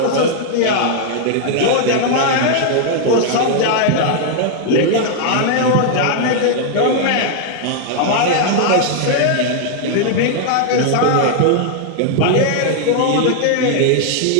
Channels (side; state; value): both; different; correlation 0.00